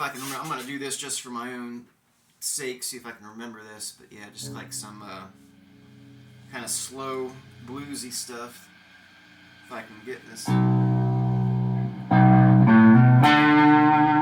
I can remember. I'm going to do this just for my own sake, see if I can remember this. But yeah, just like some kind of slow, bluesy stuff. If I can get this.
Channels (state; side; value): identical; both; correlation 1.00